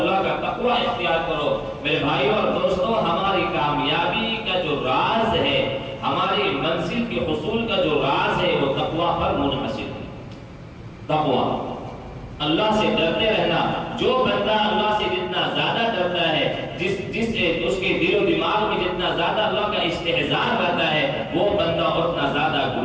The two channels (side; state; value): both; identical; correlation 1.00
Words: کا تقوی اختیار کرو۔ میرے بھائی اور دوستو، ہماری کامیابی کا جو راز ہے، ہماری منزل کے حصول کا جو راز ہے، وہ تقوی پر منحصر ہے۔ تقوی، اللہ سے ڈرتے رہنا۔ جو بندہ اللہ سے جتنا زیادہ ڈرتا ہے، اس کے دل و دماغ میں جتنا زیادہ اللہ کا استحضار رہتا ہے، وہ بندہ اتنا زیادہ